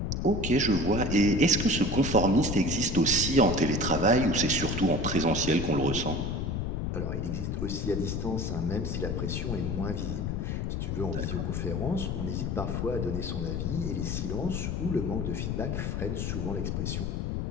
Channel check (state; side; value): noise; left; rumble, 1 dB below the sound